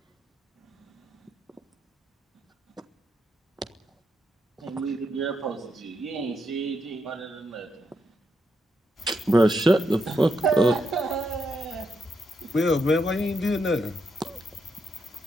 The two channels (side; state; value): both; normal; correlation 0.81